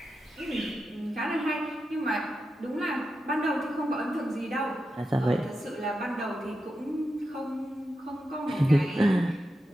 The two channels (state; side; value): normal; both; correlation 0.89